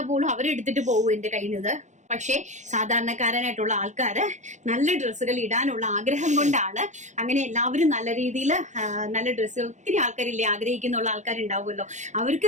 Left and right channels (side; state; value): left; late; 0.35 ms